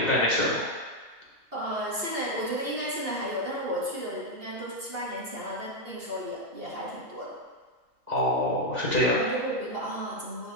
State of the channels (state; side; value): late; left; 2.8 ms